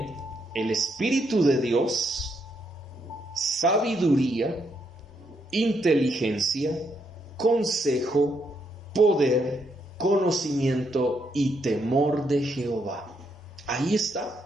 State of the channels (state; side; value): normal; both; correlation 0.76